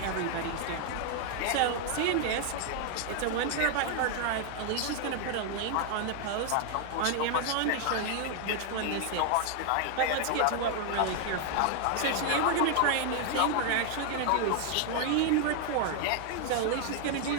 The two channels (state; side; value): different; both; correlation 0.00